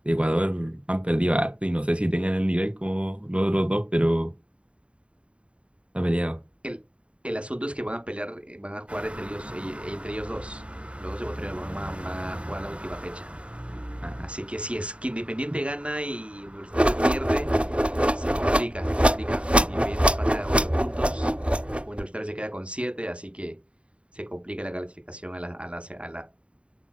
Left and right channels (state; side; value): late; left; 0.060 ms